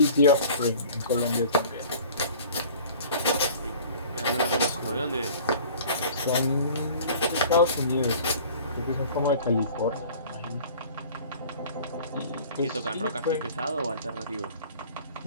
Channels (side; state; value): both; inverted; correlation -0.46